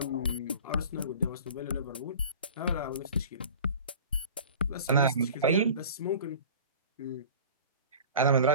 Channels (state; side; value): inverted; both; correlation -0.41